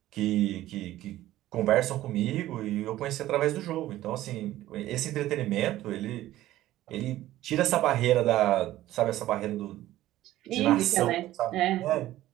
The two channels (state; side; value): quieter; left; 14.8 dB